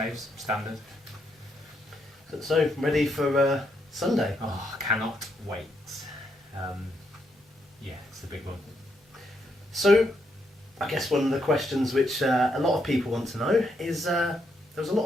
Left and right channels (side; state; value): both; normal; correlation 0.78